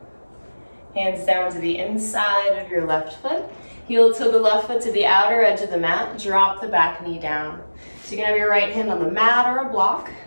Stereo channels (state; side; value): inverted; both; correlation -1.00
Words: Hands down to the inside of your left foot. Heel to the left foot to the outer edge of the mat. Drop the back knee down. So you can have your right hand on the mat or a block.